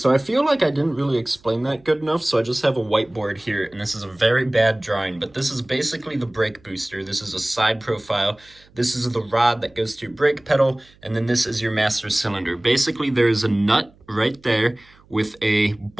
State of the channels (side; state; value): right; noise; hum, 29 dB below the sound